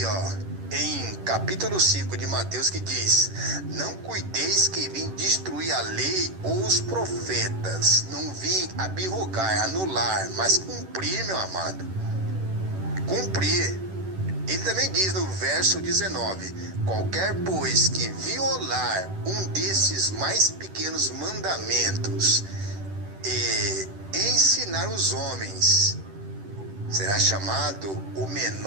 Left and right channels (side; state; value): left; late; 10 ms